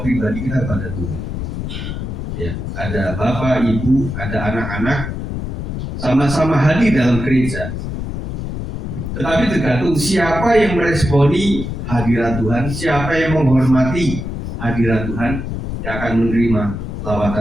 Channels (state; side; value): noise; left; rumble, 5 dB below the sound